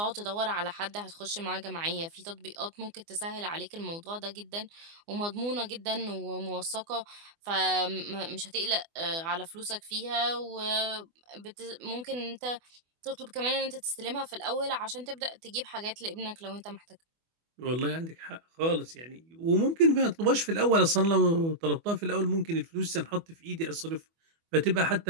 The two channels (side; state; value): left; late; 24 ms